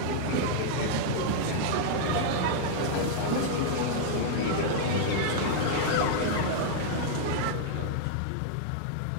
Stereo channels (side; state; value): both; different; correlation -0.01